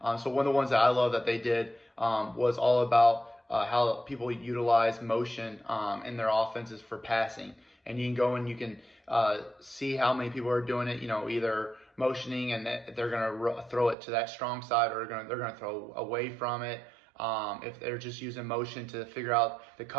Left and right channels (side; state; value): left; drops out; at 14.0 s